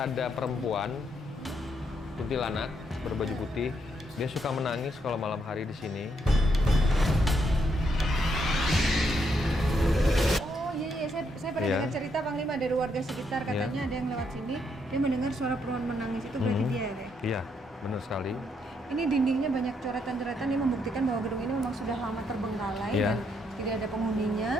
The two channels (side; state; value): both; normal; correlation 0.76